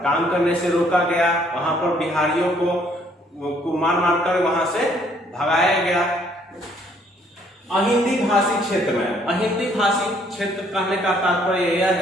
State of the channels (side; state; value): both; normal; correlation 0.64